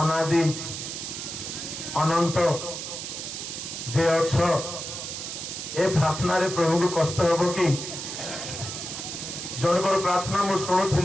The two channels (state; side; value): noise; right; hiss, 7 dB below the sound